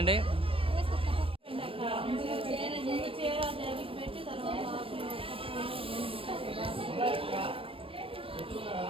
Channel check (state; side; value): late; left; 0.26 ms